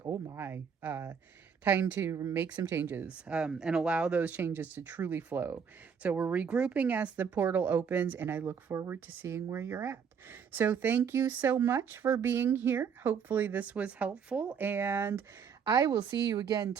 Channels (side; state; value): left; quieter; 6.8 dB